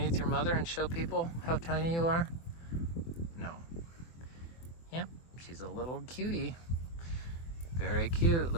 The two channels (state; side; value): late; right; 24 ms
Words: your mother and show people how tiny you are? No. Yep, she's a little cutie. Very cute,